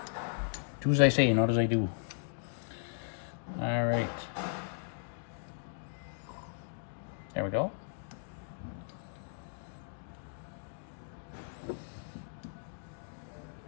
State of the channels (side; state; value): right; silent; digital silence